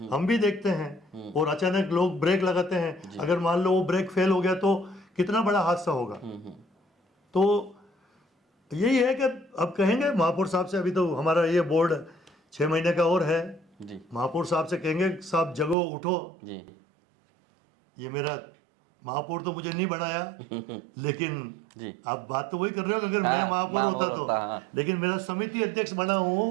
हम भी देखते हैं, और अचानक लोग ब्रेक लगाते हैं, अगर मान लो वो ब्रेक फेल हो गया तो कितना बड़ा हादसा होगा। तो यही है कि अब कहेंगे महापौर साहब से, अभी तो हमारा ये बोर्ड 6 महीने का और है, महापौर साहब से कहेंगे साहब जगो उठो। ये मेरा महापौर तो मुझे नहीं बनाया, लेकिन आप बात तो वही कर रहे हो, अगर मैं महापौर होता तो, लेकिन मेरा समिति अध्यक्ष बना हूँ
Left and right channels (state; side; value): drops out; left; at 15.8 s